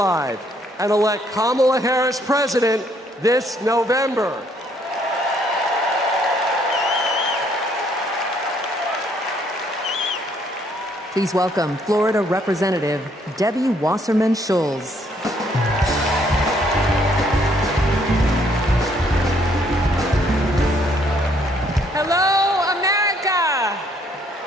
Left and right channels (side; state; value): both; normal; correlation 0.67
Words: and elect Kamala Harris president this November. Please welcome Florida Representative Debbie Wasserman Schultz. Hello, America.